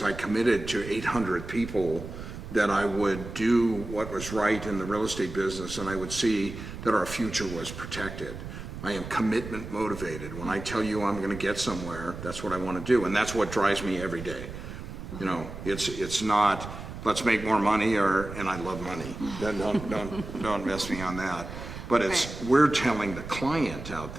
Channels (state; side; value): noise; right; rumble, 10 dB below the sound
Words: I committed to 800 people that I would do what was right in the real estate business, and I would see that our future was protected. I am commitment motivated. When I tell you I'm going to get somewhere, that's what I want to do, and that's what drives me every day. You know, it's not let's make more money, and I love money. Don't miss me on that. But it's we're telling the client out